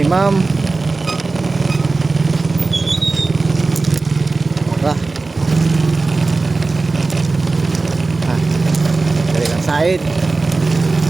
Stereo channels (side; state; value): left; quieter; 3.6 dB